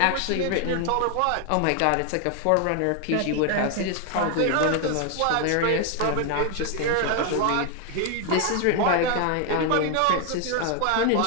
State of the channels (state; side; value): different; both; correlation 0.01